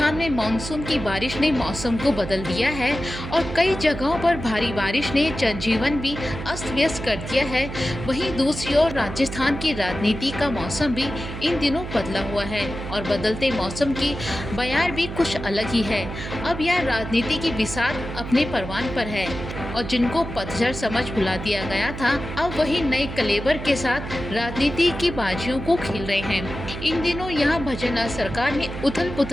में मानसून की बारिश ने मौसम को बदल दिया है और कई जगहों पर भारी बारिश ने जनजीवन भी अस्त व्यस्त कर दिया है, वहीं दूसरी ओर राजस्थान की राजनीति का मौसम भी इन दिनों बदला हुआ है और बदलते मौसम की बयार भी कुछ अलग ही है। अब यह राजनीति की बिसात अपने परवान पर है और जिनको पतझड़ समझ भुला दिया गया था, अब वही नए कलेवर के साथ राजनीति की बाजियों को खेल रहे हैं। इन दिनों यहाँ भजनलाल सरकार में उथल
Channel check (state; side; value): noise; right; hum, 8 dB below the sound